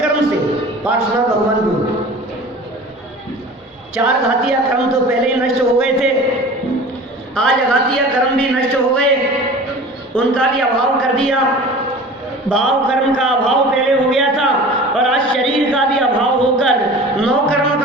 से, पार्श्वनाथ भगवान को। 4 घातीय कर्म तो पहले ही नष्ट हो गए थे, आज अघातीय कर्म भी नष्ट हो गए, उनका भी अभाव कर दिया। भाव कर्म का अभाव पहले हो गया था और आज शरीर का भी अभाव होकर, 9 कर्म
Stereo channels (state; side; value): normal; both; correlation 0.40